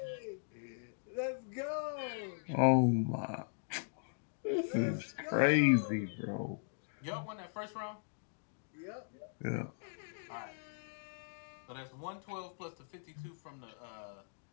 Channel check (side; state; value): right; silent; digital silence